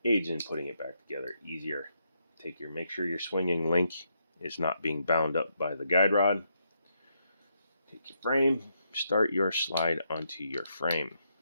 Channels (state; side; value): inverted; both; correlation -0.78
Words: Aids in putting it back together easier. Make sure your swinging link is not being bound up by the guide rod. Take your frame, start your slide onto your frame.